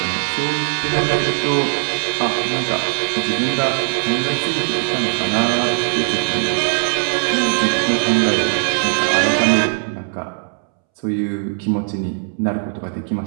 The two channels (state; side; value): silent; left; 67 dB below the other